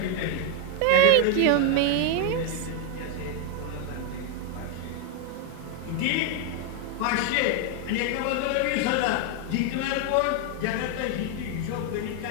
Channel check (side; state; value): both; different; correlation 0.01